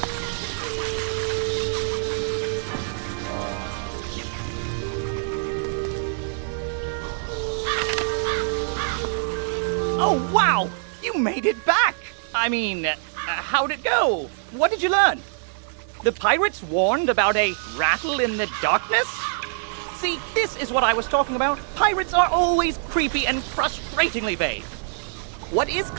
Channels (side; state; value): left; silent; 60 dB below the other